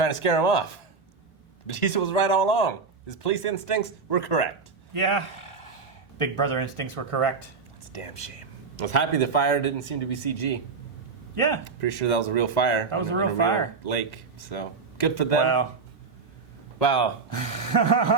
to scare him off. Batista was right all along. His police instincts were correct. Yeah. Big brother instincts were correct. It's a damn shame. I was happy the fire didn't seem to be CG. Yeah. Pretty sure that was a real fire. That was a real fire. Lake, so good for them. Wow. Wow.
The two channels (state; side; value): quieter; left; 4.7 dB